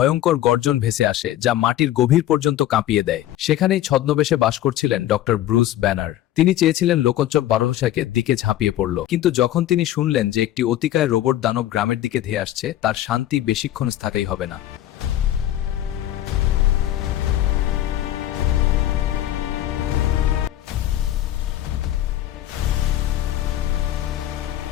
গর্জন ভেসে আসে, যা মাটির গভীর পর্যন্ত কাঁপিয়ে দেয়। সেখানেই ছদ্মবেশে বাস করছিলেন ডক্টর ব্রুস ব্যানার। তিনি চেয়েছিলেন লোকোচ্চব বারোশাকে দিকে ঝাঁপিয়ে পড়ল, কিন্তু যখন তিনি শুনলেন যে একটি অতিকায় রোবট দানব গ্রামের দিকে ধেয়ে আসছে, তার শান্তি বেশিক্ষণ স্থায়ী হবে না।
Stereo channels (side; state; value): right; quieter; 13.0 dB